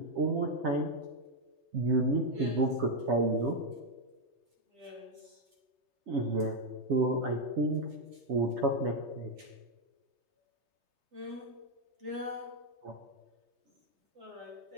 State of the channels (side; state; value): left; late; 3.3 ms